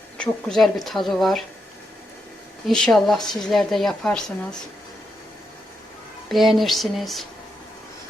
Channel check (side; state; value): both; normal; correlation 0.83